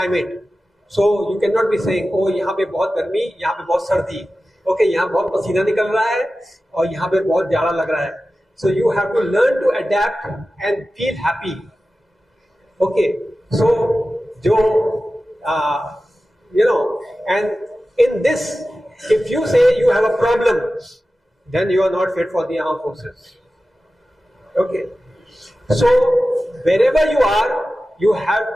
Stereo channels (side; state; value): both; normal; correlation 0.95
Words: So you cannot be saying, oh यहाँ पे बहुत गर्मी, यहाँ पे बहुत सर्दी, okay यहाँ बहुत पसीना निकल रहा है और यहाँ पे बहुत जाड़ा लग रहा है. So you have to learn to adapt and feel happy. Okay, so and in this, if you say you have a problem, then you are not fit for the armed forces. Okay, so wherever you are, you have